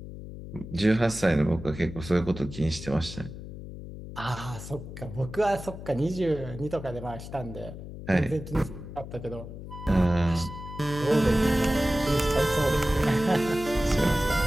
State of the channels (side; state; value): left; noise; hum, 11 dB below the sound